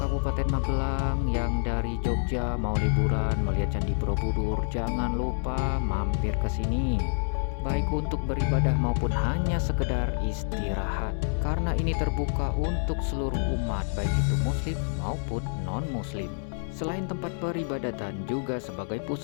Magelang yang dari Jogja mau liburan melihat Candi Borobudur, jangan lupa mampir ke sini. Baik untuk beribadah maupun hanya sekedar istirahat. Karena ini terbuka untuk seluruh umat, baik itu muslim maupun non-muslim. Selain tempat peribadatan, juga sebagai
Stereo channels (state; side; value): silent; right; digital silence